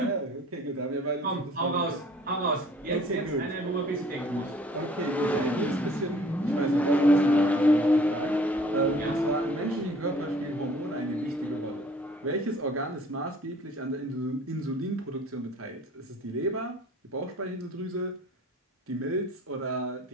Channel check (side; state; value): both; normal; correlation 0.53